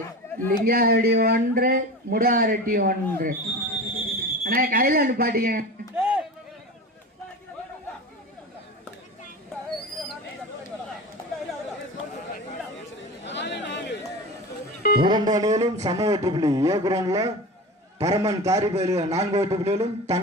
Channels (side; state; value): both; normal; correlation 0.30